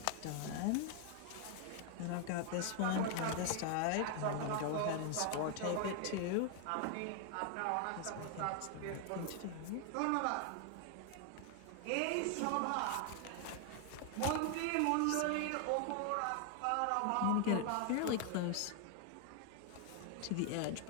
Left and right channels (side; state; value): both; different; correlation 0.00